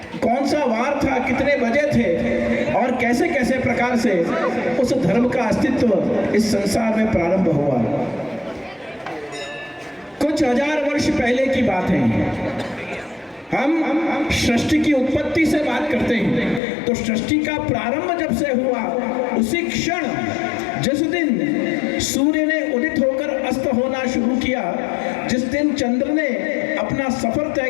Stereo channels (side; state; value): right; drops out; at 16.6 s